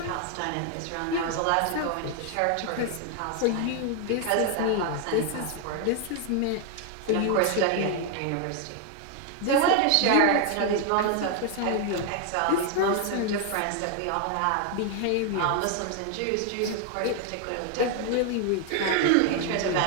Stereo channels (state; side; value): different; both; correlation 0.00